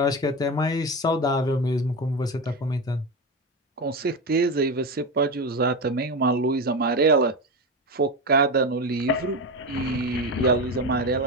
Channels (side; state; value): both; normal; correlation 0.18